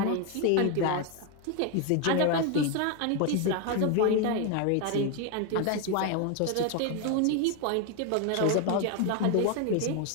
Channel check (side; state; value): both; different; correlation 0.01